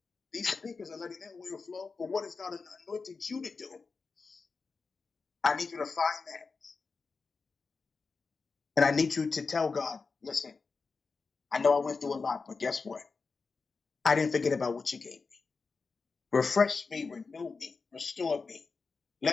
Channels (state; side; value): quieter; right; 4.5 dB